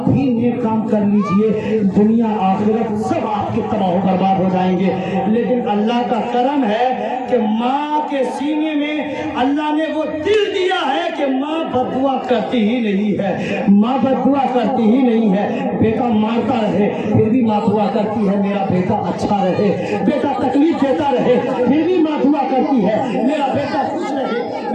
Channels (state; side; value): identical; both; correlation 1.00